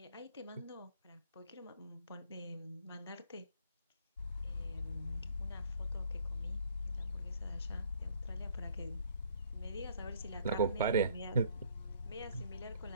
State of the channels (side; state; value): both; inverted; correlation -0.60